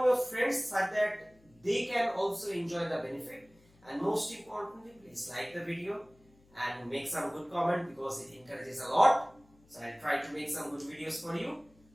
your friends so that they can also enjoy the benefit. And most importantly, please like the video and make some good comment because it encourages a lot. So I'll try to make some good videos for you.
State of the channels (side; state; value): left; noise; hum, 30 dB below the sound